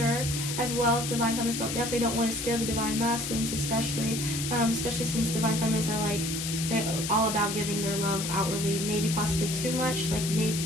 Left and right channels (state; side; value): noise; left; hiss, 4 dB below the sound